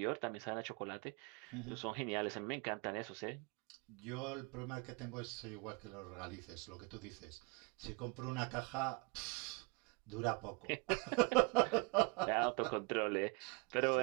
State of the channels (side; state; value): left; quieter; 30.7 dB